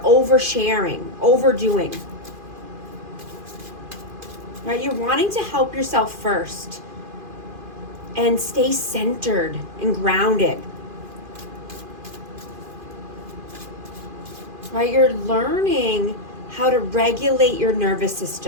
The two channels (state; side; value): late; left; 2.5 ms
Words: over sharing, overdoing, right? You're wanting to help yourself first and stay centered and grounded, right? You're learning how to regulate your nervous